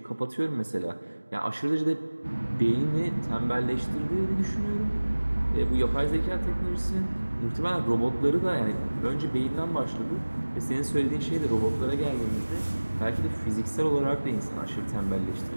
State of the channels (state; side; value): inverted; both; correlation -1.00